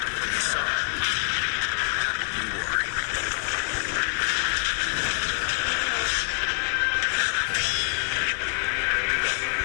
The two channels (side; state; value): right; silent; 61 dB below the other